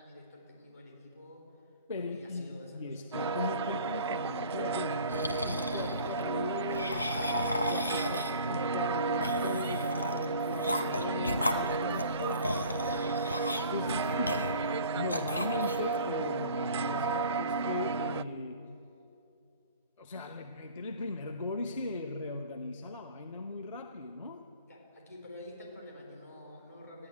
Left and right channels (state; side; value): inverted; both; correlation -0.46